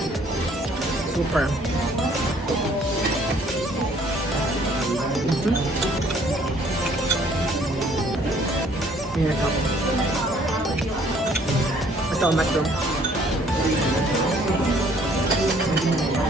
Super. Winner to. Ito, mushroom.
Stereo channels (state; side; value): normal; both; correlation 0.60